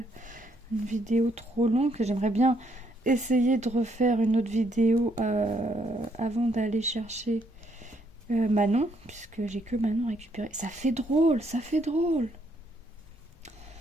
vidéo trop longue. J'aimerais bien essayer de refaire une autre vidéo avant d'aller chercher Manon, puisque j'ai que Manon récupéré. Ça fait drôle, ça fait drôle.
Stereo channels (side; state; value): both; normal; correlation 0.72